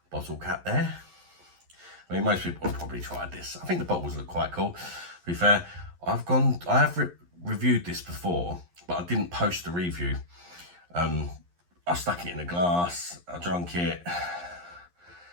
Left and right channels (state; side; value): late; left; 11 ms